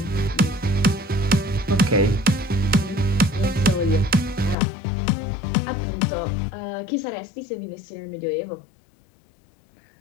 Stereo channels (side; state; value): right; drops out; at 4.5 s